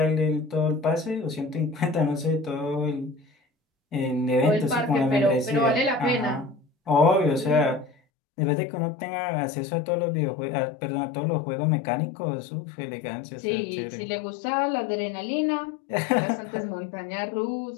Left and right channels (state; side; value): drops out; right; at 8.0 s